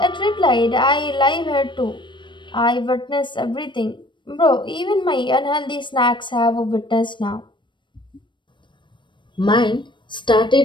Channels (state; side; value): late; right; 0.23 ms